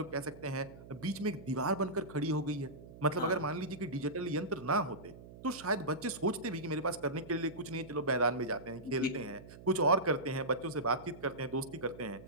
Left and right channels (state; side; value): noise; right; hum, 17 dB below the sound